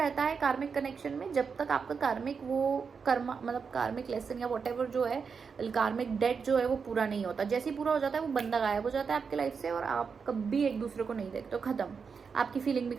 है कार्मिक कनेक्शन में जब तक आपका कार्मिक वो कर्मा मतलब कार्मिक लेसन या वट एवर जो है, कार्मिक डेट जो है वो पूरा नहीं होता। जैसे ही पूरा हो जाता है वो बंदा गायब हो जाता है आपके लाइफ से, और आप कभी एक दूसरे को नहीं देखते, तो खत्म, आपकी फीलिंग भी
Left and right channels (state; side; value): quieter; left; 5.7 dB